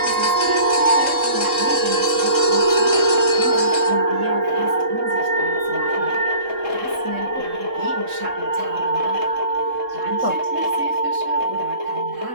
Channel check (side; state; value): left; late; 3.7 ms